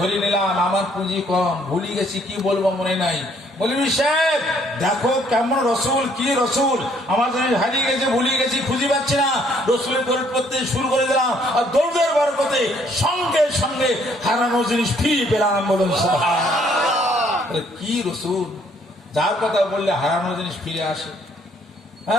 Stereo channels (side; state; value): both; normal; correlation 0.65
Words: নিলাম, আমার পুঁজি কম, ভুলে গেছি কি বলবো মনে নাই। মৌলভী সাহেব দেখো কেমন রসুল, কি রসুল আমার জিনিস হারিয়ে গেছে, ভুলে গেছি, খুঁজে পাচ্ছি না। রসুলের দৌড় করতে শুরু করে দিলাম আর দৌড়ের বরকতে সঙ্গে সঙ্গে হারানো জিনিস ফিরে পেলাম। বলুন সুবহানাল্লাহ। কি রসুল, যার কথা বললে হারানো জিনিস ফিরে আসে।